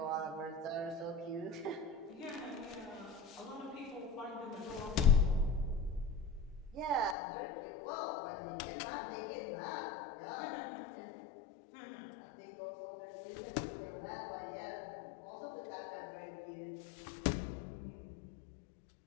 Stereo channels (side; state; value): right; drops out; at 7.2 s